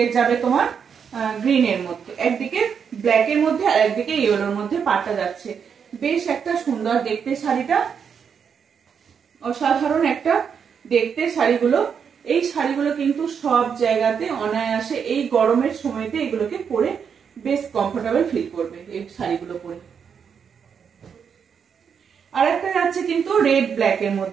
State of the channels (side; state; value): left; quieter; 7.0 dB